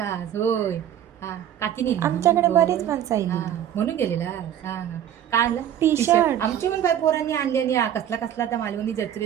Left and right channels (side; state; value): left; quieter; 10.5 dB